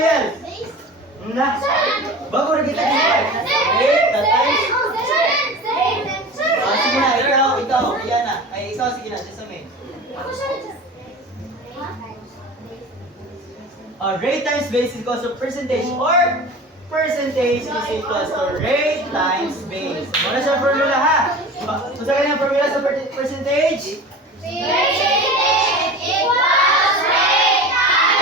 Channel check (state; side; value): normal; both; correlation 0.35